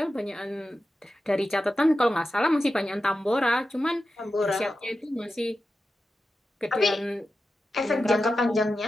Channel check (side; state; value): both; normal; correlation 0.92